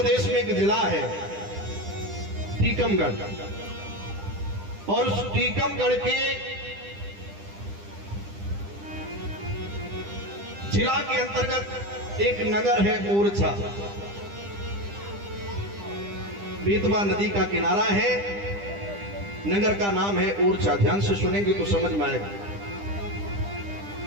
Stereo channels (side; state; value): left; late; 10 ms